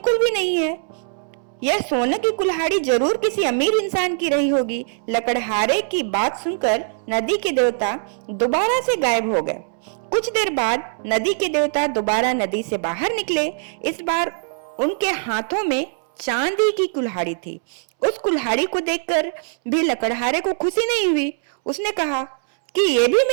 भी नहीं है। यह सोने की कुल्हाड़ी जरूर किसी अमीर इंसान की रही होगी। लकड़हारे की बात सुनकर नदी के देवता दोबारा से गायब हो गए। कुछ देर बाद नदी के देवता दोबारा नदी से बाहर निकले। इस बार उनके हाथों में चांदी की कुल्हाड़ी थी। उस कुल्हाड़ी को देखकर भी लकड़हारे को खुशी नहीं हुई। उसने कहा कि ये भी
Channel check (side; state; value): left; silent; 65 dB below the other